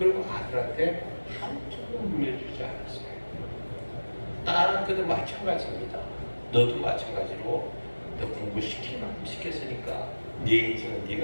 아들한테 한쪽도 물려주지 않았어요. 딸한테도 마찬가지입니다. 너도 마찬가지로 너 공부시킬 만큼 시켰으니까 네 인생은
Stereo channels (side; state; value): both; inverted; correlation -1.00